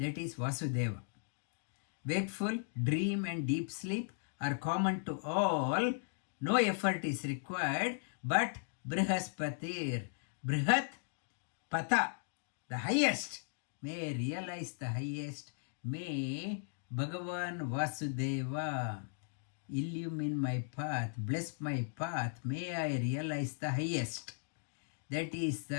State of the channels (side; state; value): right; silent; digital silence